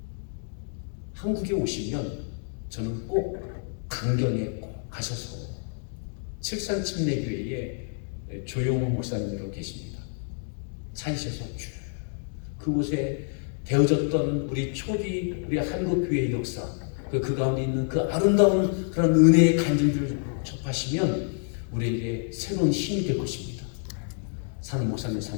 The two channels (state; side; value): silent; right; 59 dB below the other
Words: 한국에 오시면 저는 꼭 강경에 꼭 가셔서 칠산침례교회에 조용호 목사님으로 계십니다. 찾으셔서 쭉 그곳에 되어졌던 우리 초기 우리 한국교회의 역사, 그 가운데 있는 그 아름다운 그런 은혜의 간증들을 접하시면 우리에게 새로운 힘이 될 것입니다. 사는 목사님,